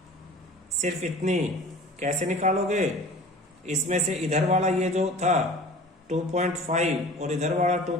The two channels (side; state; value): both; normal; correlation 0.42